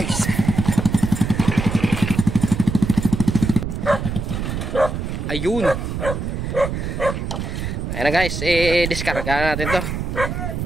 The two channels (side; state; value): right; noise; rumble, 4 dB below the sound